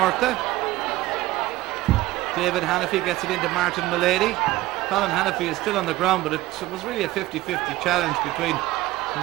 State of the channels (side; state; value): left; quieter; 17.7 dB